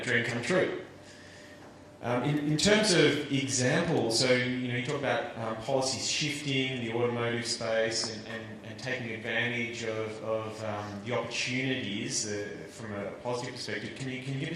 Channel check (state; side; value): identical; both; correlation 1.00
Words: dream come true. In terms of examples, so you talk about policies shifting, the automotive space, and taking advantage of the opportunities from a positive perspective. Can you give